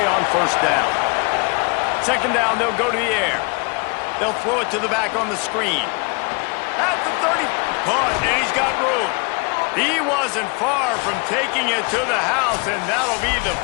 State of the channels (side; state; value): right; quieter; 31.8 dB